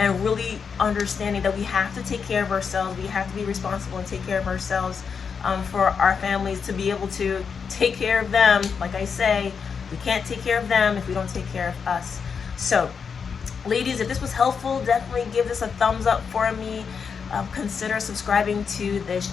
really understanding that we have to take care of ourselves. We have to be responsible and take care of ourselves for our families, to be able to take care of them. Like I say, we can't take care of them if we don't take care of us. So ladies, if this was helpful, definitely give this a thumbs up for me. Consider subscribing to this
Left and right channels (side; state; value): right; quieter; 6.1 dB